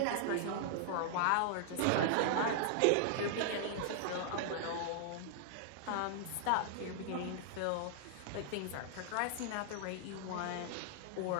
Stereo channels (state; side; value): different; both; correlation -0.01